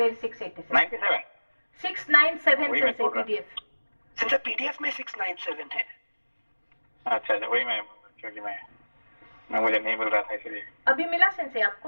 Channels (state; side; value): inverted; both; correlation -1.00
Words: 687 97 697 से पीडीएफ। सिंचा पीडीएफ में 697 है। अच्छा वही मैं, क्योंकि मैं मुझे नहीं मिल रहा था इसलिए। अभी मिला सेंसे